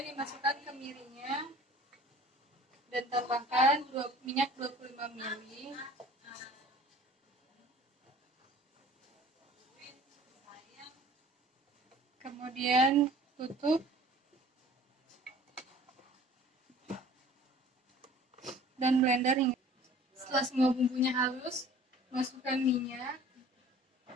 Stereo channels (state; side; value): normal; both; correlation 0.48